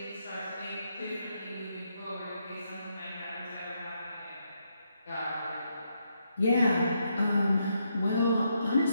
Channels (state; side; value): inverted; both; correlation -0.79